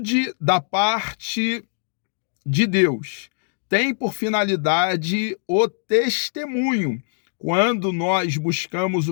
da parte de Deus, tem por finalidade o testemunho. Quando nós buscamos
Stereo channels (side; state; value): right; silent; digital silence